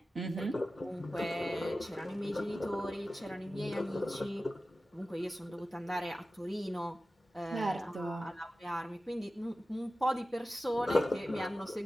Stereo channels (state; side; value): normal; both; correlation 0.95